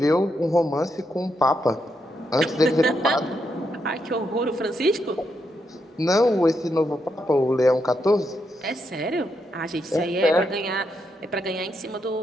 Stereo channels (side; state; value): both; normal; correlation 0.81